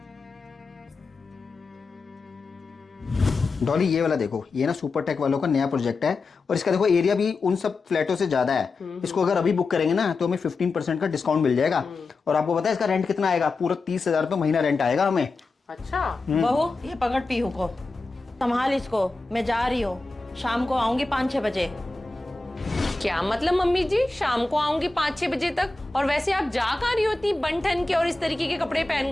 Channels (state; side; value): quieter; right; 3.6 dB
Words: डॉली ये वाला देखो, ये ना सुपर टेक वालों का नया प्रोजेक्ट है, और इसका देखो एरिया भी उन सब फ्लैटों से ज्यादा है। इसको अगर अभी बुक करेंगे ना तो हमें 15% का डिस्काउंट मिल जाएगा। और आपको पता है इसका रेंट कितना आएगा? पूरा 30,000 रुपये महीना रेंट आएगा हमें। अच्छा। बहू ये पकड़ पीहू को, संभाल इसको, मैं जा रही हूँ, शाम को आऊंगी 5-6 बजे। क्या मतलब मम्मी जी, शाम को आऊंगी 5-6 बजे तक? और वैसे आप जा कहाँ रही होती बन ठन के और इस तरीके के कपड़े